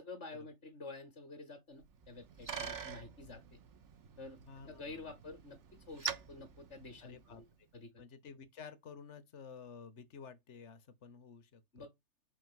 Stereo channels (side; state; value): right; late; 3.3 ms